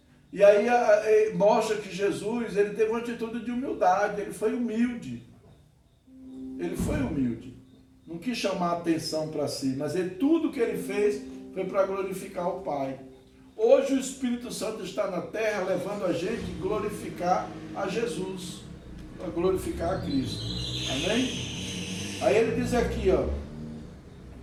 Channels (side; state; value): both; identical; correlation 1.00